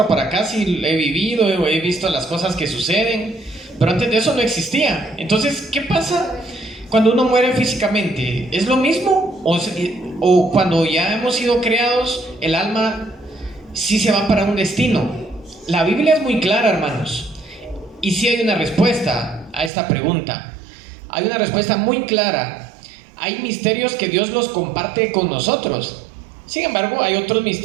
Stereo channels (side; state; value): left; drops out; at 19.7 s